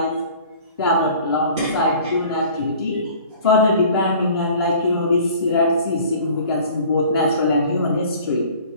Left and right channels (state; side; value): inverted; both; correlation -0.47